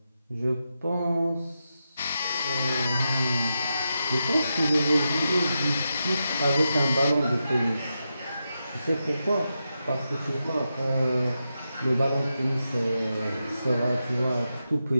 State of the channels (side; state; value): both; inverted; correlation -0.87